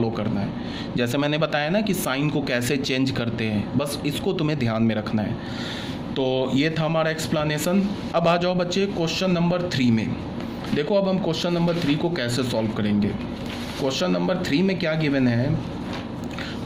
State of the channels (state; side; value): identical; both; correlation 1.00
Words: करना है। जैसे मैंने बताया ना कि साइन को कैसे चेंज करते हैं, बस इसको तुम्हें ध्यान में रखना है। तो ये था हमारा एक्सप्लेनेशन। अब आ जाओ बच्चे क्वेश्चन नंबर 3 में। देखो अब हम क्वेश्चन नंबर 3 को कैसे सॉल्व करेंगे। क्वेश्चन नंबर 3 में क्या गिवन है,